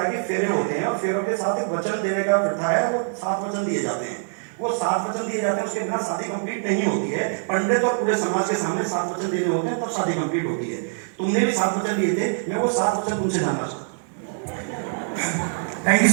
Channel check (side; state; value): left; silent; digital silence